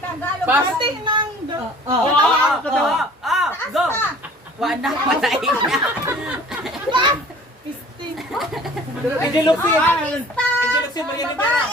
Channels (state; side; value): normal; both; correlation 0.49